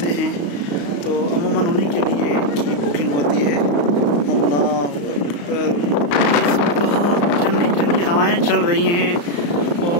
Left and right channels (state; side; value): late; right; 35 ms